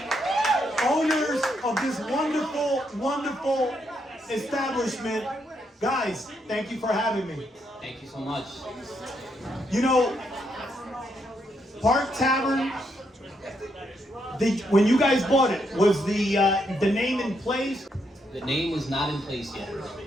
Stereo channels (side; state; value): both; normal; correlation 0.78